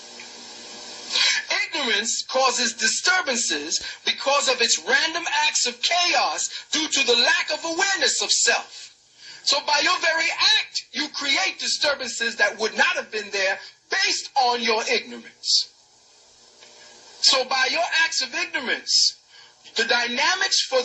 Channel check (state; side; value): identical; both; correlation 1.00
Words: Ignorance causes disturbances because of its random acts of chaos due to the lack of awareness of self. So by your very act, you create disturbances that would not have been there based on your ignorance. So by your acts of ignorance, the dynamics for